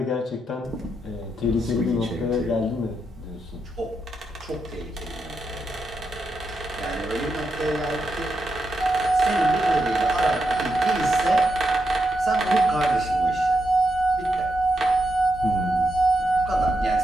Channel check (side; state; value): both; normal; correlation 0.84